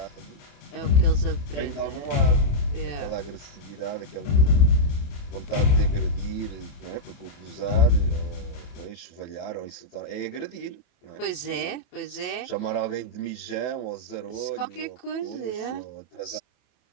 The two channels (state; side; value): late; right; 27 ms